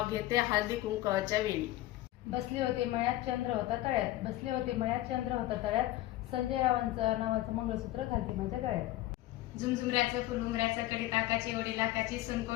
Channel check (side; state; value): right; quieter; 16.0 dB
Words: घेते हळदी कुंकवाच्या वेळी. बसली होती मळ्यात चंद्र होता तळ्यात, बसली होती मळ्यात चंद्र होता तळ्यात, संजय रावांचं नावाचं मंगळसूत्र घालते माझ्या गळ्यात. झुमझुमऱ्याचं फुलुमऱ्याचं कडी ताकाची ओढी लाखाची